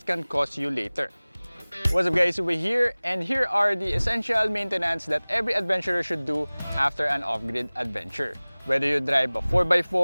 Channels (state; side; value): inverted; both; correlation -1.00